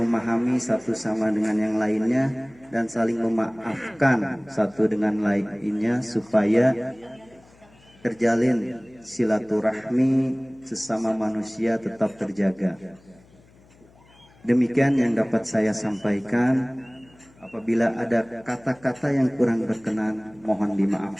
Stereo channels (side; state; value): left; noise; hum, 28 dB below the sound